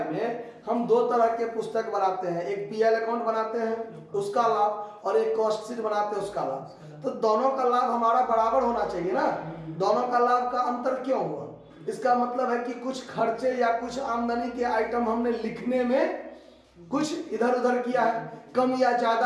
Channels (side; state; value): both; identical; correlation 1.00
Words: में हम 2 तरह के पुस्तक बनाते हैं, एक पीएल अकाउंट बनाते हैं उसका लाभ और एक कॉस्ट शीट बनाते हैं उसका लाभ। तो दोनों का लाभ हमारा बराबर होना चाहिए ना, दोनों का लाभ का अंतर क्यों हुआ? इसका मतलब है कि कुछ खर्चे या कुछ आमदनी के आइटम हमने लिखने में कुछ इधर उधर किया है, कम या